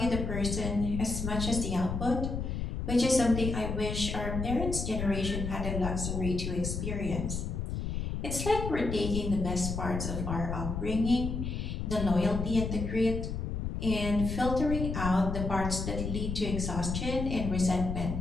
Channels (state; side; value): noise; left; rumble, 3 dB below the sound